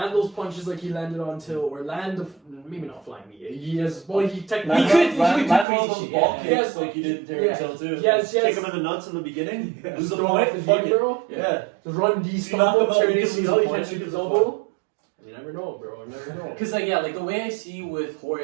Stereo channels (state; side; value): drops out; left; at 5.7 s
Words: those punches like he landed on Till, or maybe not flying knee. He has, well, he technically Land all those shit, ball yeah. kicks Yes. like he did Darren Till too. Yes. Kick him in the nuts in the beginning. just Lose the throw off point. the Fuck knee, it. bro. Yeah. Just run D You knock him stumble, out, turn you can lose ACL, the you point, can't shoot you his can elbow. You never know, bro. You never know. Cause like yeah, like the way I see with